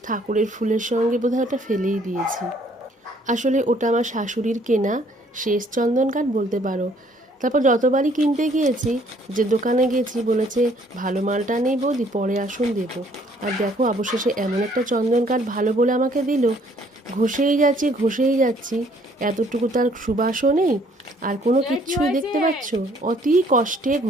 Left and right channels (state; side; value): normal; both; correlation 0.62